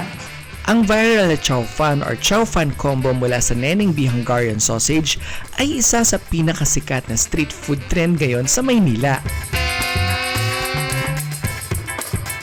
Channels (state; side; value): identical; both; correlation 1.00